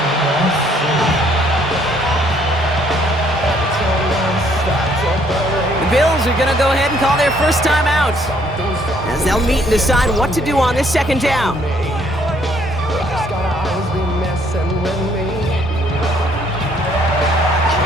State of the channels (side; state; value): both; normal; correlation 0.65